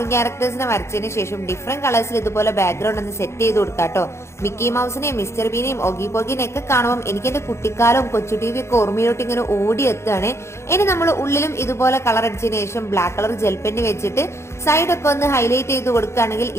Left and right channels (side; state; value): right; late; 0.13 ms